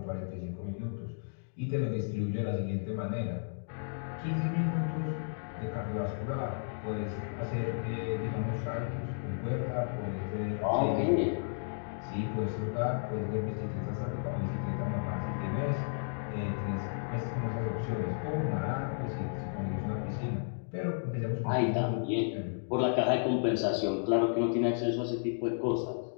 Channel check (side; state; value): right; silent; digital silence